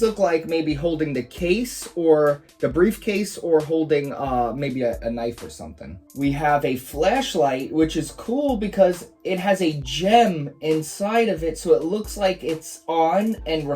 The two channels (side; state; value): both; identical; correlation 1.00